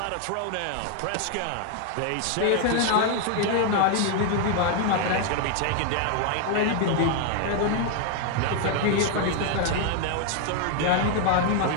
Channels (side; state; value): both; different; correlation 0.00